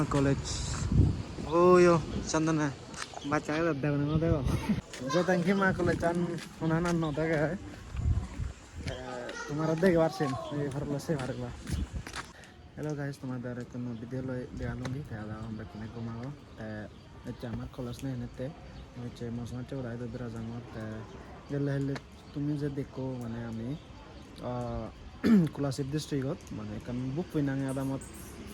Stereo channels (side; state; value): both; identical; correlation 1.00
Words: কলেজ ওয়ো চন্দনা বাচ্চাকে দেখো না দেখো যে তঙ্কিমা কলেজ আন ওনানা ন দেখে তোমার দেখে পারছেন এই ভারলা সে ভারলা হ্যালো গাইস তোমাদের কোনো বিদ্যালয় দেয়ালুঙ্গি তাহলে আমরা কিনে ঘুমাবো হচ্ছে আমার কলেজ নেই এনেতে হচ্ছে মশলা চৌড়াই দুধরা জামত গেলে হলে তুমি যে দেখো মানে আমি কোলাশিপ ডিস্ট্রিক্টত মানে কারণ বুক ফিনাঙে আদামত